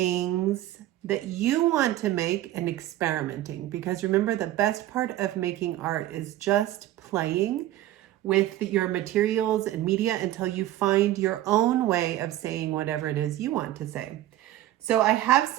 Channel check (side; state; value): left; quieter; 14.1 dB